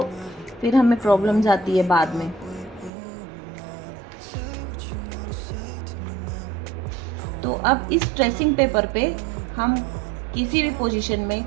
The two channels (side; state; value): left; drops out; at 2.9 s